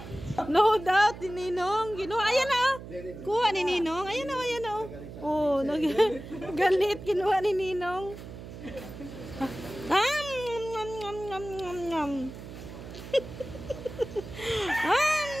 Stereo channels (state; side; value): noise; right; hum, 12 dB below the sound